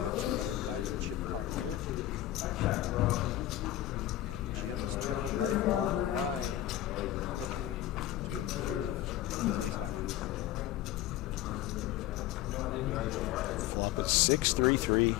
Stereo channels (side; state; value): right; quieter; 13.8 dB